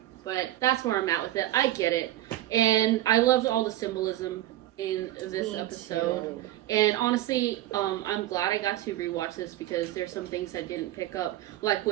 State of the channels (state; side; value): quieter; left; 14.4 dB